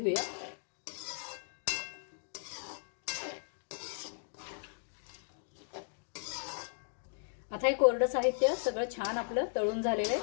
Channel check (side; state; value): right; silent; digital silence